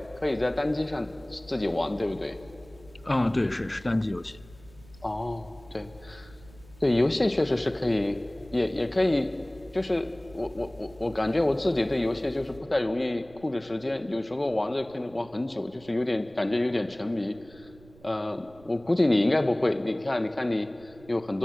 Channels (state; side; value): noise; right; rumble, 23 dB below the sound